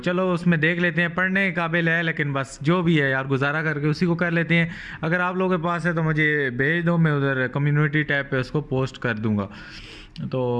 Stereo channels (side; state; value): both; identical; correlation 1.00